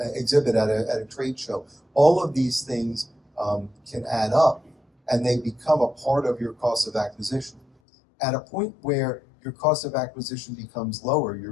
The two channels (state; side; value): drops out; right; at 7.7 s